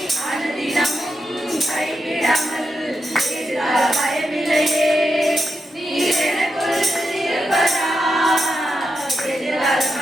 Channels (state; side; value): normal; both; correlation 0.86